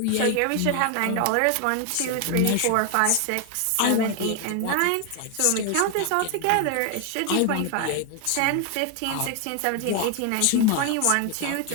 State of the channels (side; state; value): both; different; correlation 0.01